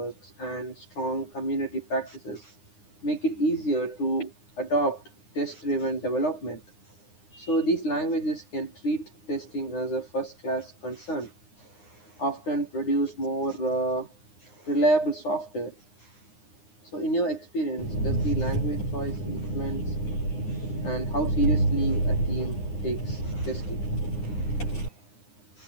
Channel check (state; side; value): late; right; 9.8 ms